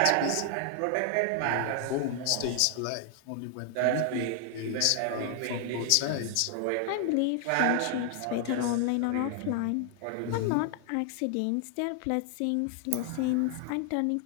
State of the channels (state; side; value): different; both; correlation 0.00